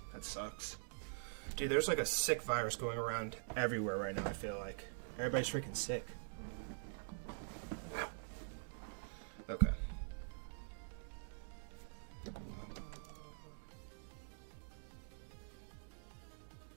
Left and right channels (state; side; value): silent; left; digital silence